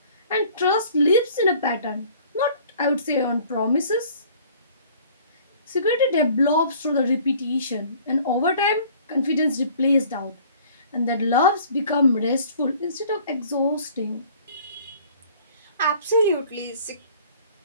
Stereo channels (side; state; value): both; inverted; correlation -0.52